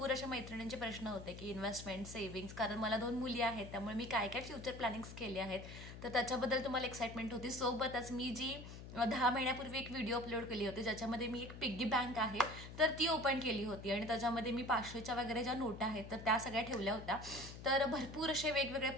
अशा मैत्रिणींचे प्रश्न होते की इन्व्हेस्टमेंट, सेव्हिंग्स, कारण मला 2 मुली आहेत, त्यामुळे मी काय काय फ्युचर प्लॅनिंग्स केले आहेत, तर त्याच्याबद्दल तुम्हाला एक्साइटमेंट होती. सोबतच मी जी 10 महिन्यापूर्वी एक व्हिडिओ अपलोड केली होती, ज्याच्यामध्ये मी एक पिग्गी बँक आहे तर ती ओपन केली होती आणि त्याच्यामध्ये मी 500च्या वगैरे ज्या नोटा आहेत तर त्या सगळ्या ठेवल्या होत्या. तर भरपूर असे वेगवेगळे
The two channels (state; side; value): noise; left; hum, 12 dB below the sound